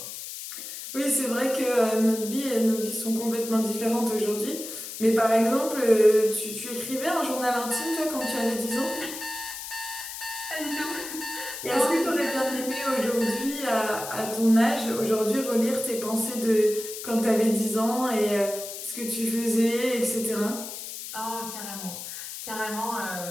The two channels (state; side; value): noise; left; hiss, 9 dB below the sound